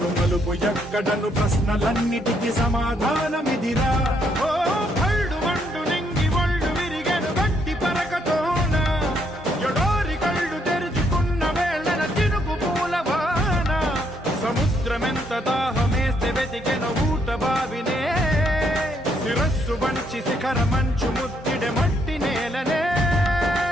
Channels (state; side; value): normal; both; correlation 0.73